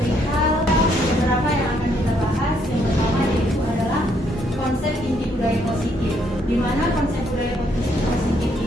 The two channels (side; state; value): both; normal; correlation 0.71